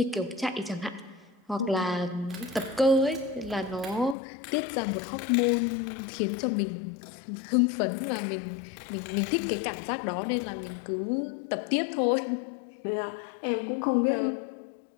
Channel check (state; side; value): drops out; right; at 4.2 s